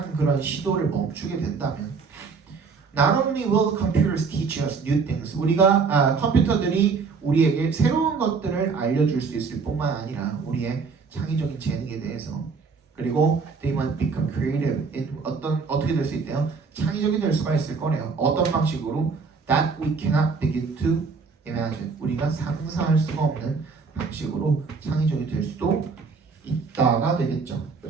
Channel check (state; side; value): quieter; left; 5.1 dB